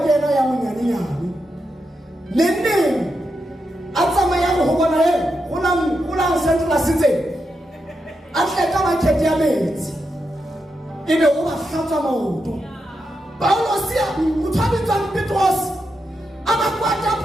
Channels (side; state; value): both; normal; correlation 0.85